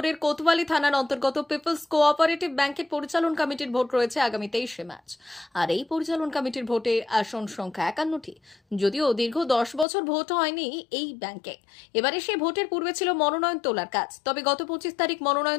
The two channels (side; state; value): right; drops out; at 9.9 s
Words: কোতওয়ালি থানার অন্তর্গত পিপলস কোঅপারেটিভ ব্যাংকের পরিচালন কমিটির ভোট রয়েছে আগামী 23শে মার্চ। আর এই পরিচালন কমিটির ভোটে আসন সংখ্যা 51টি। যদিও দীর্ঘ 10 বছর ভোট হয়নি এই ব্যাংকে। এবারে সে ভোটের পূর্বে ছিল মনোনয়ন তোলার কাজ। তবে গত 25 তারিখ